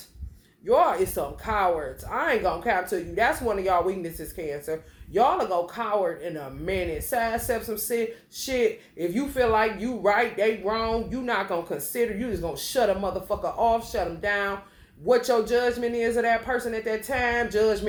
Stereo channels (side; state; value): both; identical; correlation 1.00